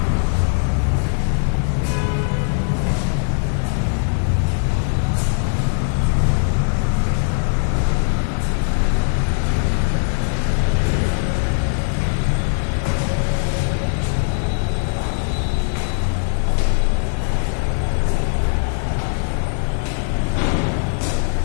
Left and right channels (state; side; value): silent; right; 59 dB below the other